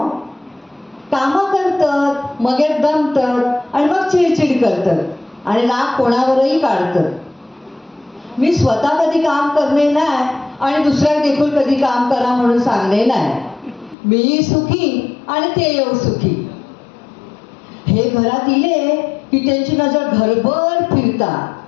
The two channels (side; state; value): right; drops out; at 14.0 s